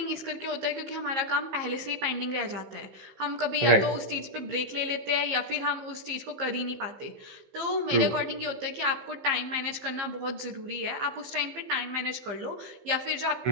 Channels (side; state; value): left; late; 15 ms